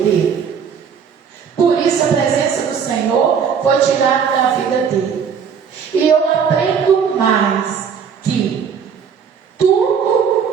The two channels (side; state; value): left; quieter; 6.9 dB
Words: dele. Por isso a presença do Senhor foi tirada da vida dele. E eu aprendo mais que tudo